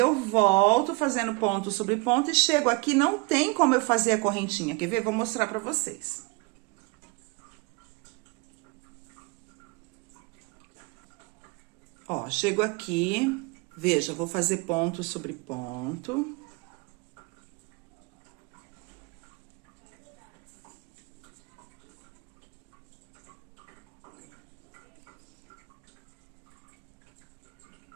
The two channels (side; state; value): left; quieter; 27.7 dB